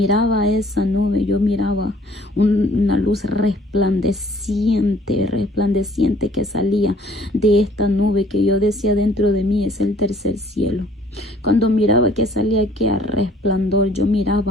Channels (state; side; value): normal; both; correlation 0.57